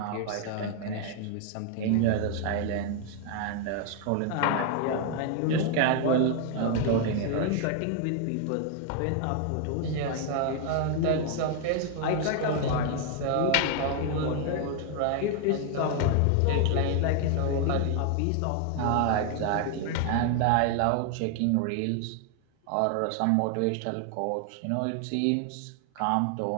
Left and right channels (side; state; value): both; different; correlation 0.00